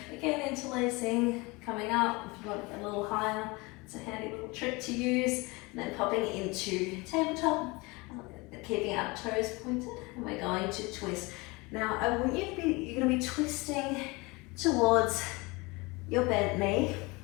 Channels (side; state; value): right; quieter; 25.2 dB